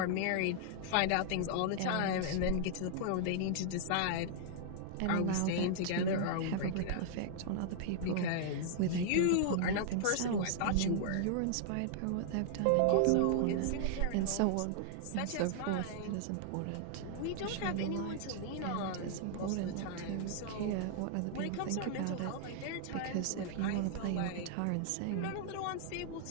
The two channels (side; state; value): both; different; correlation -0.01